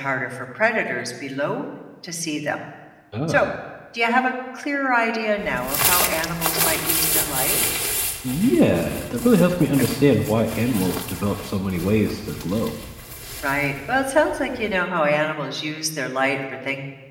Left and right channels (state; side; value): identical; both; correlation 1.00